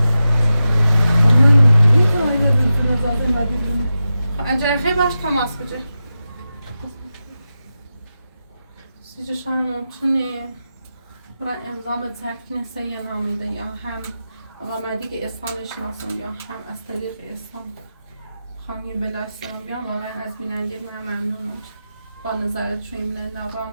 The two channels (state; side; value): inverted; both; correlation -0.91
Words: اجازه خیلی باش تماس بجه سیجا شاید ممکنه برای امضا زرد کنه سیه نامیده یا هم آمدی که اسلام شناسم یا هم از طریق اسلام خانی بلاش سرم بیام واقعا از بیننده من ممنونم با نظرت شویم لرام